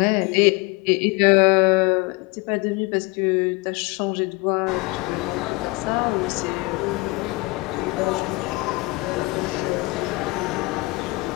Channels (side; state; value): right; quieter; 25.0 dB